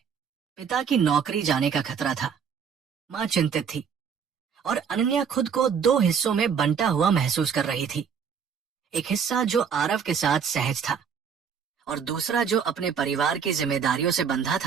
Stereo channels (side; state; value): left; quieter; 6.9 dB